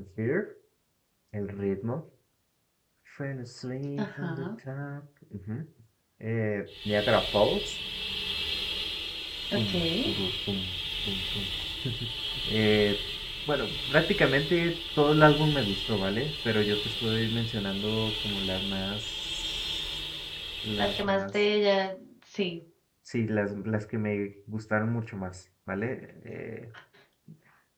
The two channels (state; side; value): identical; both; correlation 1.00